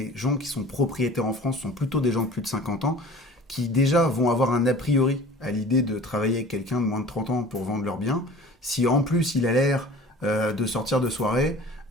gens qui sont propriétaires en France sont plutôt des gens de plus de 50 ans qui déjà vont avoir un a priori à l'idée de travailler avec quelqu'un de moins de 30 ans pour vendre leurs biens. Si en plus il a l'air de sortir de soirée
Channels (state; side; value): normal; both; correlation 0.44